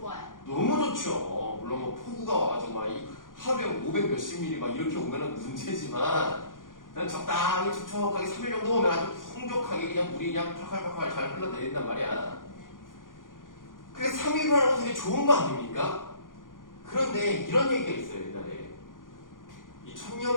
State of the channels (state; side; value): late; right; 0.89 ms